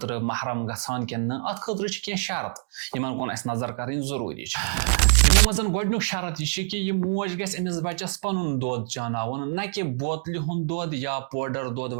महरम गसान कि अत खतर कह शरत इन कुन नजर कर जरूरी यमो मज गोडनुक शरत यह कि यह मोज गस अमिस बच्चस पनुन दोद चानावन न कि बोतल हुंद दोद या पाउडर दोद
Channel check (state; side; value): silent; left; digital silence